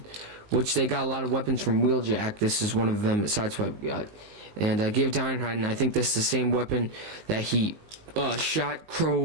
which they got a lot of weapons from Wheeljack, this is one of them that Sideswipe got, and gave it to Ironhide. And I think this is the same weapon that he shot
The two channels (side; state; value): left; late; 19 ms